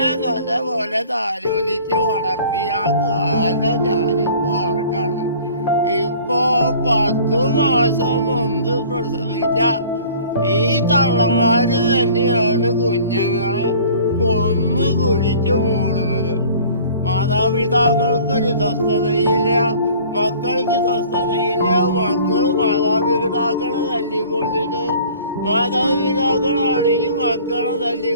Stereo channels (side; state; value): both; inverted; correlation -0.49